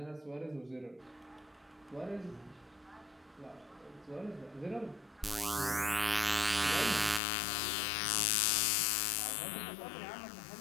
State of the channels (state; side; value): drops out; right; at 7.2 s